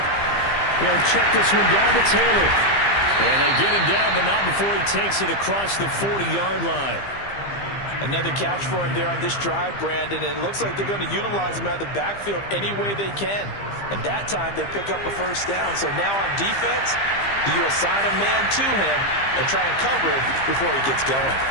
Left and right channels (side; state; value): right; late; 15 ms